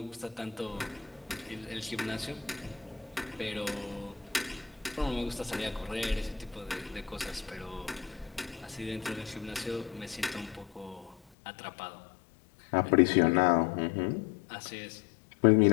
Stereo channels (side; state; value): right; drops out; at 11.2 s